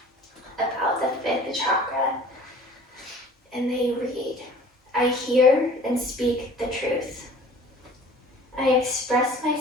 about the fifth chakra. And they read, I hear and speak the truth. I express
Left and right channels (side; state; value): both; normal; correlation 0.48